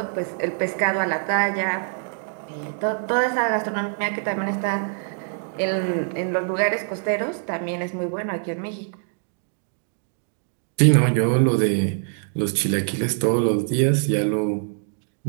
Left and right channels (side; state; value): left; silent; digital silence